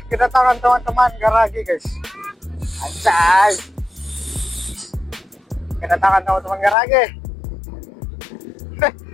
kedatangan teman-teman garagi guys. Anjay, kedatangan teman-teman garagi.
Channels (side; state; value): right; drops out; at 6.8 s